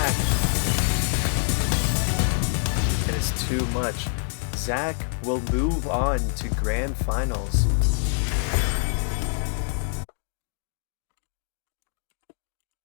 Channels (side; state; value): right; silent; digital silence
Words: And it's too much. Zach will move on to Grand Finals.